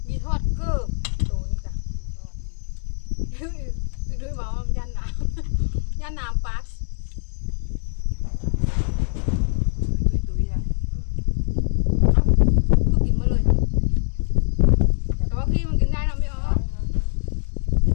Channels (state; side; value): silent; right; digital silence